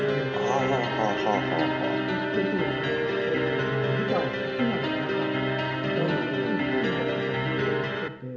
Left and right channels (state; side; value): identical; both; correlation 1.00